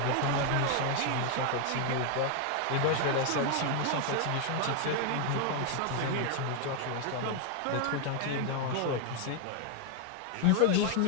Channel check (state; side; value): different; both; correlation 0.01